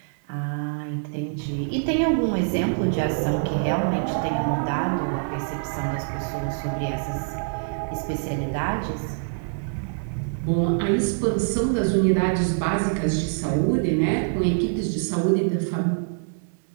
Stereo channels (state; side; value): silent; left; digital silence